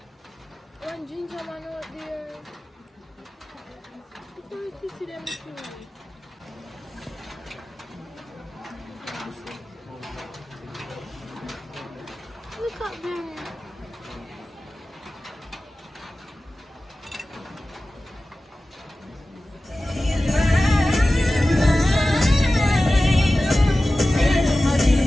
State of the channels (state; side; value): normal; both; correlation 0.96